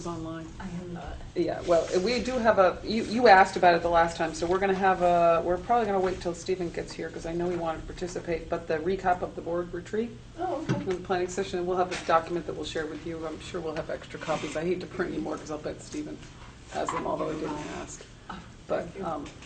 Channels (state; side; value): identical; both; correlation 1.00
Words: online. I am not. Yeah, well, we do have you asked about it the last time, so we're gonna have we're probably gonna wait till Stephen gets here, because I know he wanted to participate, but the recap of the board retreat, Oh, okay. the planning session, we'll have this document that we'll share with you. I'm sure we'll have extra copies. I hate to print any more, because I'll bet Stephen has them, although I didn't ask. But,